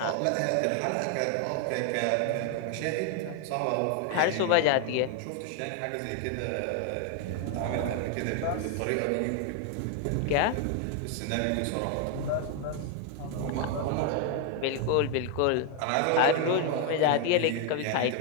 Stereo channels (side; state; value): both; different; correlation 0.01